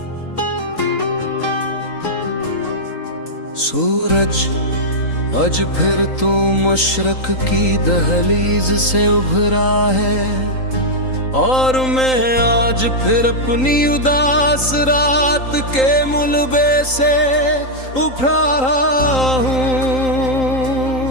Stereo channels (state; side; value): late; right; 3.8 ms